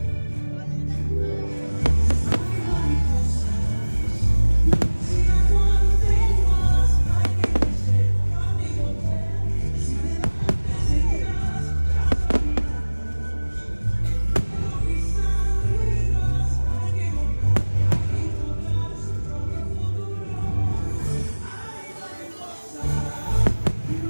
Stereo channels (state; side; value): inverted; both; correlation -1.00